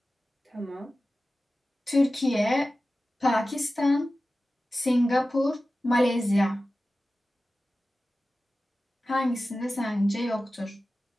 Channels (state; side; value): normal; both; correlation 0.95